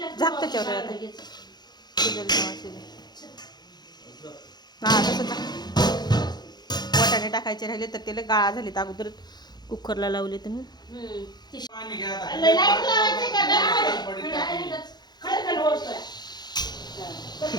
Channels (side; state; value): right; late; 0.20 ms